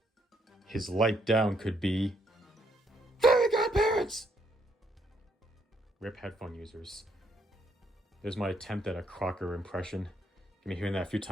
His light down could be Fairy Godparents! RIP headphone users. There's my attempt at a Crocker impression. You've been hearing that a few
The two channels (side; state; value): both; normal; correlation 0.72